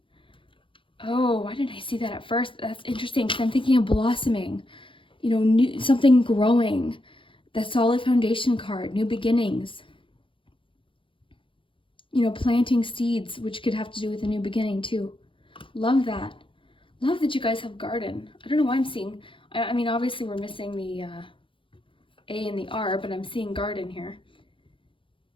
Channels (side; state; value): right; late; 0.25 ms